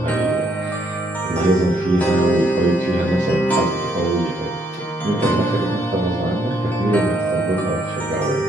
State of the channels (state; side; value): normal; both; correlation 0.72